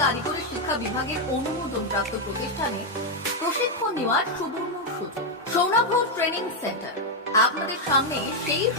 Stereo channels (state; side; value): normal; both; correlation 0.01